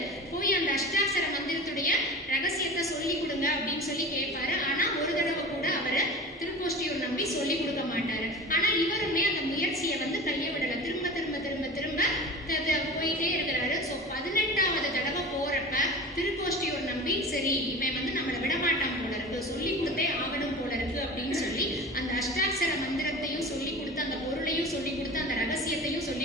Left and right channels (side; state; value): both; normal; correlation 0.34